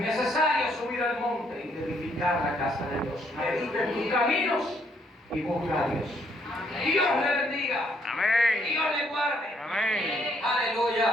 subir al monte y edificar la casa de Dios. Medita en tus caminos y busca a Dios. Dios le bendiga. Amén. Dios le guarde. Amén.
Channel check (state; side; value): normal; both; correlation 0.70